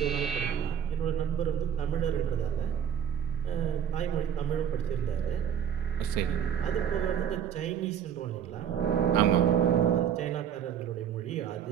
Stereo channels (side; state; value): left; quieter; 8.7 dB